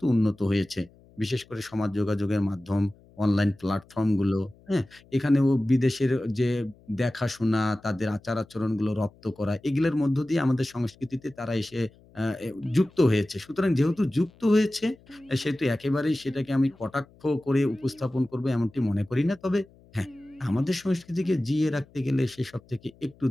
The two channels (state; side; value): noise; left; hum, 27 dB below the sound